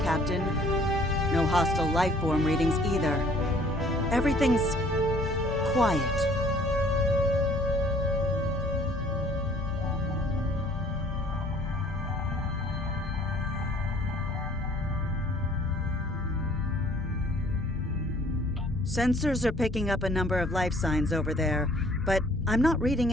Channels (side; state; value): both; normal; correlation 0.56